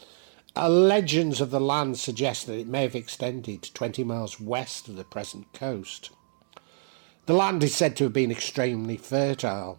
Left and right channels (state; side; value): silent; left; digital silence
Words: Legends of the land suggest that it may have extended 20 miles west of the present coast. The land is said to have been extremely